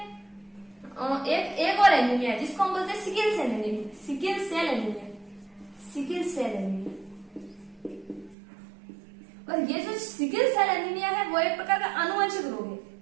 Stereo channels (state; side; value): drops out; left; at 8.3 s